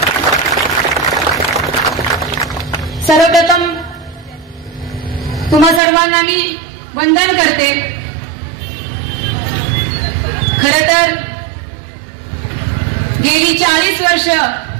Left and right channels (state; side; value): drops out; left; at 5.8 s